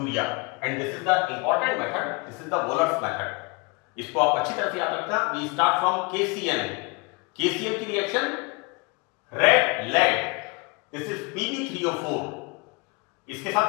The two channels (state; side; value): quieter; right; 28.6 dB